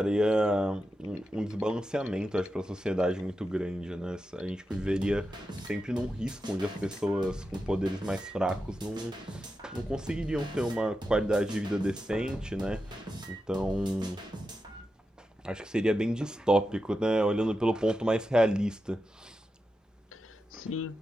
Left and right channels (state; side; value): normal; both; correlation 0.89